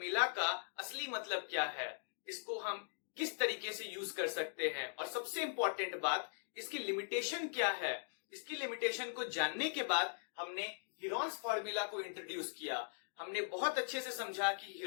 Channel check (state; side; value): silent; right; digital silence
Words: का असली मतलब क्या है, इसको हम किस तरीके से यूज कर सकते हैं, और सबसे इंपॉर्टेंट बात, इसकी लिमिटेशन क्या है। इसकी लिमिटेशन को जानने के बाद हमने हीरोन्स फॉर्मूला को इंट्रोड्यूस किया। हमने बहुत अच्छे से समझा कि